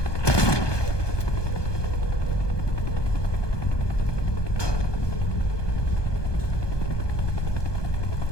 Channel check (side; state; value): right; late; 1.2 ms